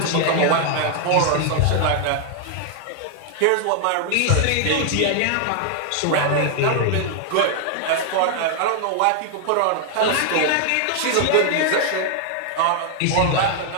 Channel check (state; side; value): different; both; correlation 0.00